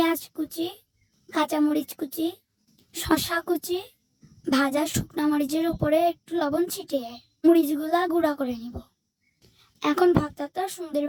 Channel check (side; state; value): both; identical; correlation 1.00